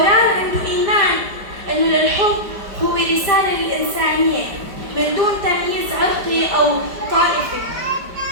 عنده إيمان أنه للحب هو رسالة للإنسانية من دون تمييز عرقي أو طائفي.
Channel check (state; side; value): late; left; 5.0 ms